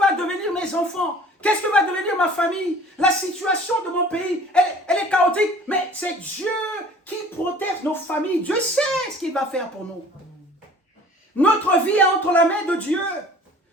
devenir mes enfants? Qu'est-ce que va devenir ma famille? La situation de mon pays, elle est chaotique. Mais c'est Dieu qui protège nos familles. Dieu sait ce qu'il va faire pour nous. Notre vie est entre la main de Dieu.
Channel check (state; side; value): normal; both; correlation 0.48